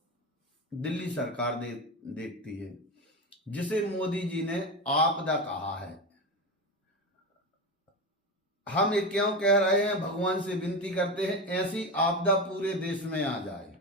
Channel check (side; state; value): both; normal; correlation 0.19